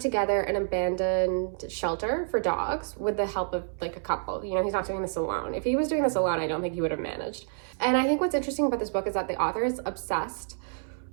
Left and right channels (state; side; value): silent; left; 59 dB below the other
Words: together an abandoned shelter for dogs with the help of a couple. You know, he's not doing this alone. If he was doing this alone, I don't think he would have managed. And I think what's interesting about this book is that the author is obsessed